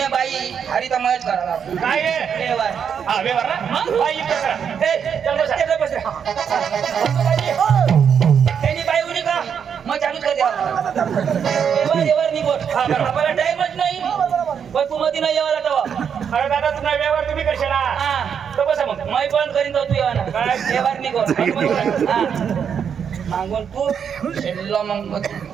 बाई हरी तर मयच करा काय आहे व्यवहार हा व्यवहार ना बाई युद्ध करा चल बसा. त्यांनी बाई उडी का मग चालूच कर द्यावा व्यवहार निघोट हा, बरोबर. आपल्याला टाइमच नाही पण तू मध्ये नाही यावाला तेव्हा अरे दादा तुम्हाला व्यवहार तुम्ही करशाल हा तर बसा मग मै बंद करीन तो तू येवाना काय? व्यवहार निघोट हा मागून तू शेल्लो मग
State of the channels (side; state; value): left; quieter; 7.5 dB